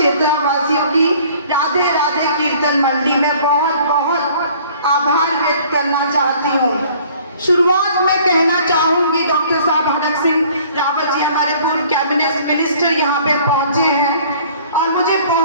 की राधे राधे कीर्तन मंडली में बहुत बहुत आभार व्यक्त करना चाहती हूँ। शुरुआत में कहना चाहूंगी डॉक्टर साहब हरक सिंह रावत जी हमारे पूर्व कैबिनेट मिनिस्टर यहाँ पे पहुंचे हैं और मुझे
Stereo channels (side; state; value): both; inverted; correlation -0.53